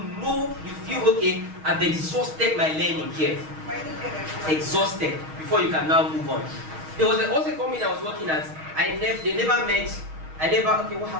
know, you feel okay. I've exhausted my learning here. Exhausted before you can now move on. There was also a company I was working at. Okay, what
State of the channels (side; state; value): left; late; 6.4 ms